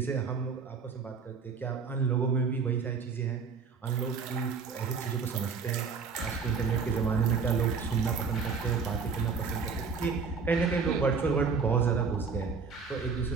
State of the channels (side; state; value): left; quieter; 5.4 dB